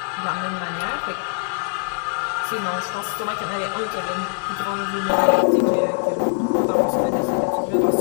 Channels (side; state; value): right; silent; 64 dB below the other